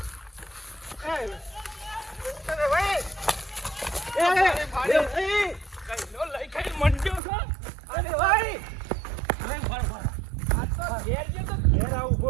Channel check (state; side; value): drops out; left; at 7.2 s